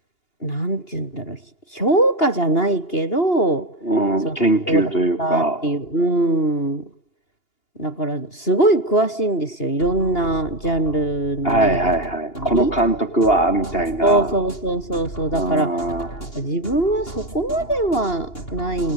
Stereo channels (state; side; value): late; right; 2.8 ms